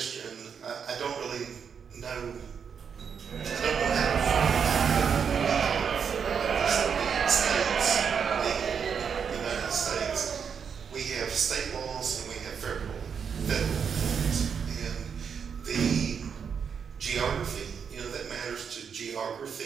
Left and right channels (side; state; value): left; quieter; 6.8 dB